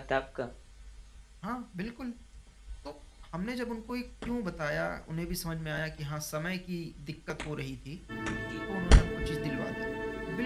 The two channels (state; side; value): identical; both; correlation 1.00